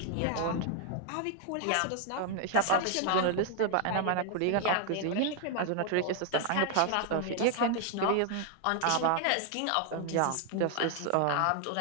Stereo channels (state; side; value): different; both; correlation 0.00